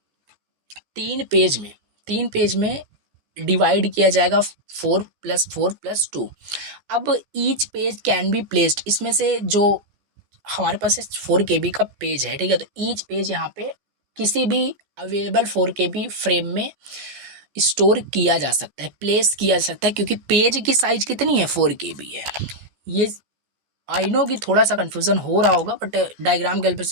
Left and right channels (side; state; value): left; late; 14 ms